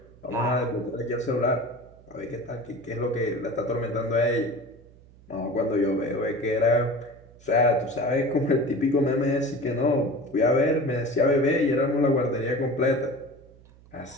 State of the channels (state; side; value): noise; right; hum, 25 dB below the sound